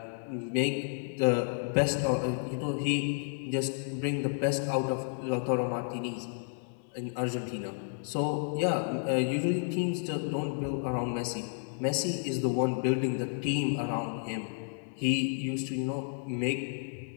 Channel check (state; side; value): silent; right; 57 dB below the other